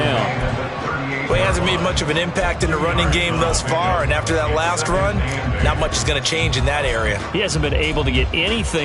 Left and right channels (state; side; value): identical; both; correlation 1.00